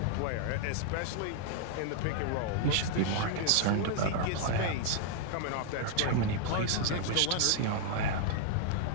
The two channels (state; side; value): different; both; correlation 0.00